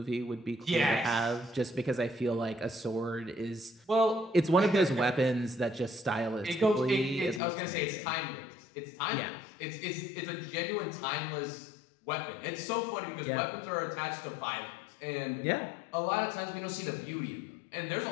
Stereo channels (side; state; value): right; drops out; at 7.4 s